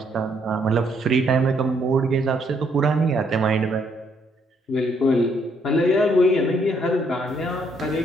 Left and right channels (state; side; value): normal; both; correlation 0.70